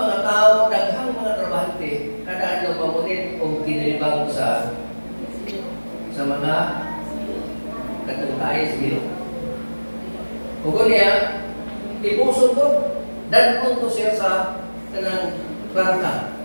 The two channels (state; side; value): inverted; both; correlation -1.00